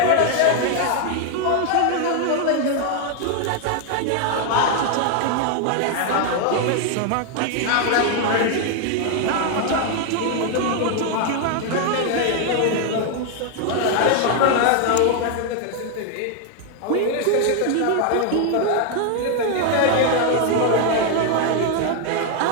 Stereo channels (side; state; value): both; different; correlation 0.00